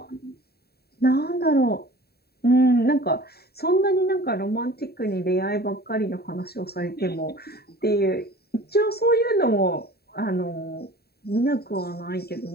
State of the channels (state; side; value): late; right; 0.46 ms